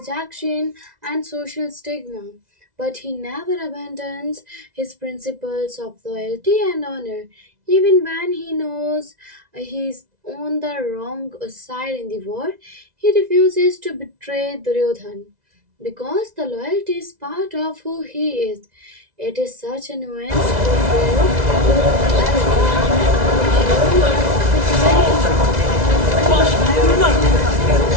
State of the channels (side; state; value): left; late; 2.0 ms